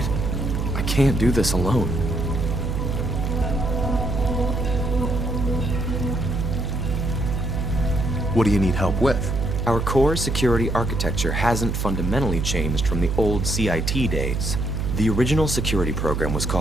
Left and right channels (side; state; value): right; noise; hum, 1 dB below the sound